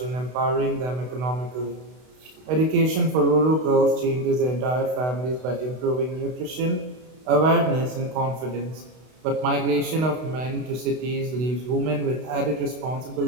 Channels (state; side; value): late; left; 32 ms